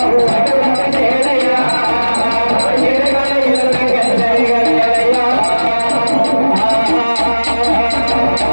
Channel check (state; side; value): inverted; both; correlation -1.00